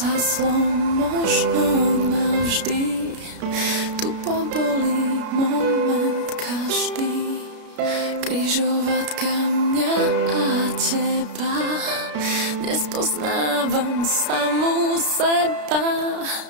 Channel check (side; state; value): left; late; 33 ms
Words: možno navždy, tu pobolí moment každý. Križovatka mňa a teba, nespoznávam samú seba.